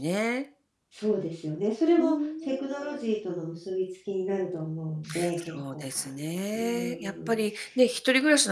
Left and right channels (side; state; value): both; identical; correlation 1.00